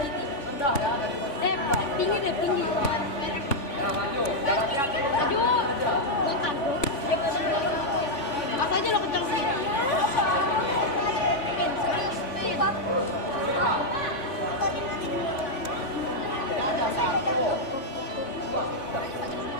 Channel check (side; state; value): right; late; 3.5 ms